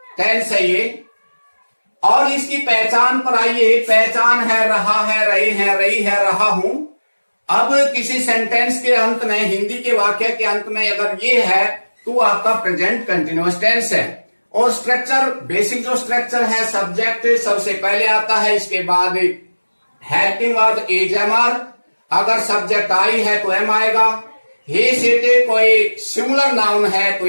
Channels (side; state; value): both; inverted; correlation -1.00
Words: टेंस है ये, और इसकी पहचान पर आइए। पहचान है रहा है, रही है, रही है, रहा हूं। अब किसी सेंटेंस के अंत में, हिंदी के वाक्य के अंत में अगर ये है तो आपका प्रेजेंट कंटिन्यूअस टेंस है। और स्ट्रक्चर, बेसिक जो स्ट्रक्चर है, सब्जेक्ट सबसे पहले आता है, इसके बाद helping verb is am are, अगर सब्जेक्ट आई है तो एम आएगा। ही सीटे कोई सिंगुलर नाउन है तो